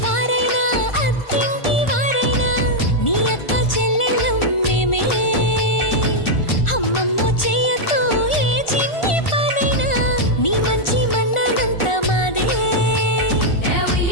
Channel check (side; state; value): right; late; 1.4 ms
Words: వారైనా అత్తింటి వారైనా నీ అక్క చెల్లెళ్ళం మేమే. అమ్మమ్మ చెయ్యకు ఏ చిన్ని పనైనా నీ మంచి మన్నానంత మాదే.